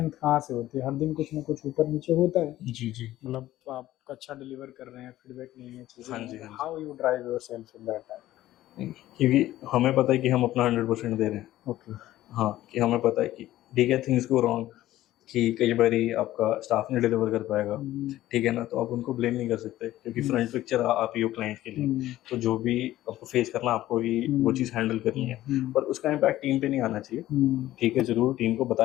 कहाँ से होती है, हर दिन कुछ ना कुछ ऊपर नीचे होता है जी, मतलब आप अच्छा डिलीवर कर रहे हैं, फीडबैक नहीं है चीज़ें, हाँ जी, how you drive yourself in that time, क्योंकि हमें पता है कि हम अपना 100% दे रहे हैं। ओके हाँ, कि हमें पता है कि ठीक है थिंग्स गो रॉन्ग, कि कई बारी आपका स्टाफ नहीं डिलीवर कर पाएगा, ठीक है ना, तो आप उनको ब्लेम नहीं कर सकते, क्योंकि फ्रंट पिक्चर आप ही हो क्लाइंट के लिए, तो जो भी आपको फेस करना आपको ही वो चीज़ हैंडल करनी है, पर उसका इम्पैक्ट टीम पे नहीं आना चाहिए, ठीक है। जरूर टीम को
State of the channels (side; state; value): right; quieter; 14.7 dB